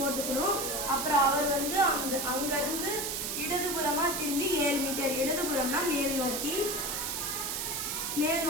அப்புறம் அவர் வந்து அங்கிருந்து இடதுபுறமா திரும்பி 7 மீட்டர், இடதுபுறம்னா மேல் நோக்கி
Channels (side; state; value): right; noise; hiss, 2 dB below the sound